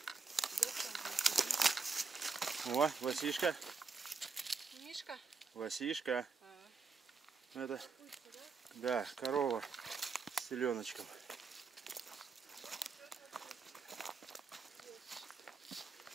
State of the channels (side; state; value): left; quieter; 4.7 dB